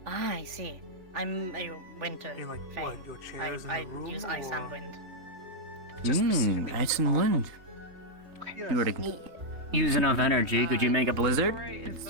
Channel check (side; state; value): left; late; 3.3 ms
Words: Ah, I see. I'm a winter You, like, vein. what, your chairs in the I room, use ice and or- wind. Ice and wind. If you were to use enough energy, could you make a blizzard? It